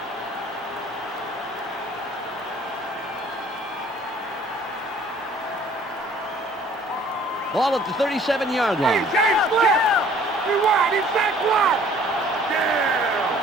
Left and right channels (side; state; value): both; normal; correlation 0.55